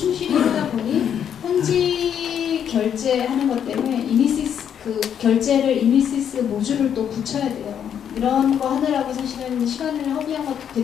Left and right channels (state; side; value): quieter; right; 8.7 dB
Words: 하다 보니 현지 결제하는 것 때문에 이니시스 그 결제를 이니시스 모듈을 또 붙여야 돼요. 이런 거 하느라고 사실은 시간을 허비한 것도